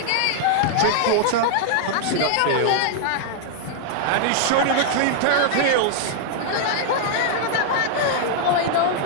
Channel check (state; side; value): different; both; correlation -0.01